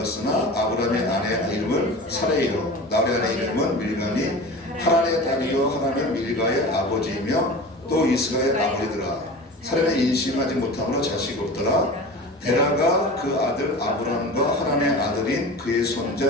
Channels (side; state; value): both; normal; correlation 0.34